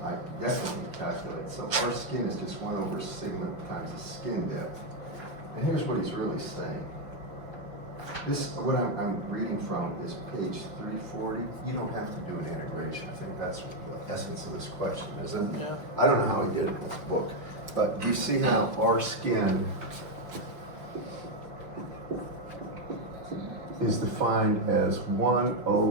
definitely calculate. So R skin is just 1 over sigma times the skin depth. And here's what he's really saying. This, what I'm reading from is page 340. You don't have to do an integration. I think that's the essence of this question, isn't it? Yeah. I don't know how he did it with the book, but do you see how R skin is defined as 1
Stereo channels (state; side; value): late; left; 5.8 ms